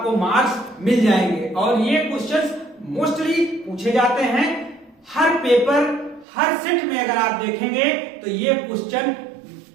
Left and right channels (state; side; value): drops out; left; at 6.2 s